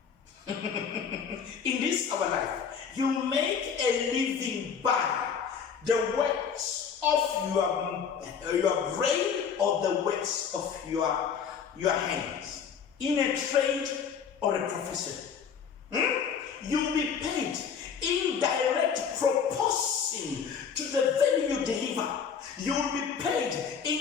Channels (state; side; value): quieter; right; 6.9 dB